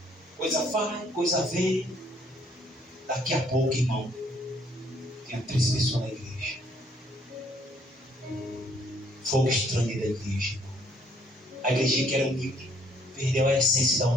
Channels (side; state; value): both; normal; correlation 0.64